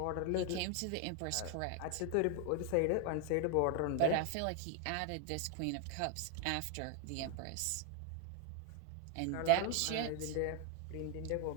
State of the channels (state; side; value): different; both; correlation 0.01